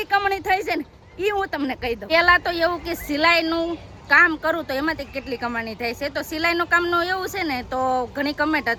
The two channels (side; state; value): both; identical; correlation 1.00